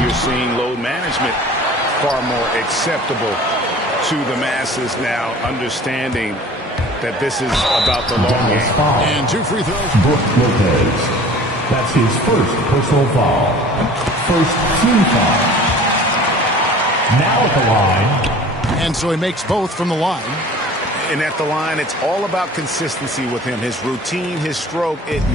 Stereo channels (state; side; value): normal; both; correlation 0.45